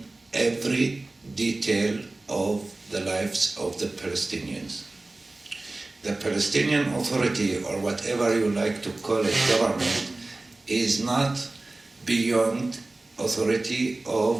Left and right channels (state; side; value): quieter; left; 3.0 dB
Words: every detail of the lives of the Palestinians. The Palestinian Authority, or whatever you like to call it, government, is not beyond authority